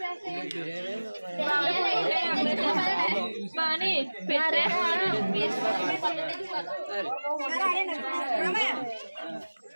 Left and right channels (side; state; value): both; inverted; correlation -1.00